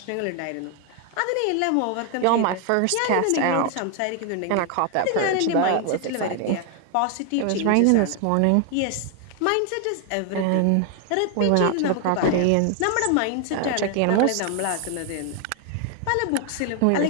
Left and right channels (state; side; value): different; both; correlation 0.00